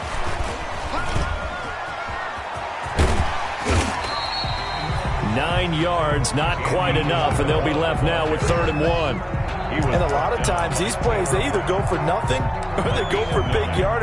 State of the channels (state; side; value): identical; both; correlation 1.00